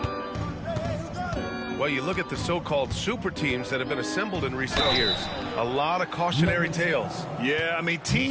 Well, you look at the so-called super teams that have been assembled in recent years. A lot of cautionary tales. Yeah, I mean,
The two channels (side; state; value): both; identical; correlation 1.00